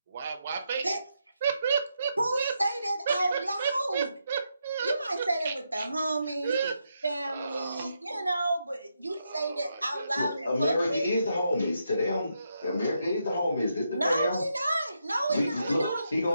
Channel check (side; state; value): both; inverted; correlation -0.82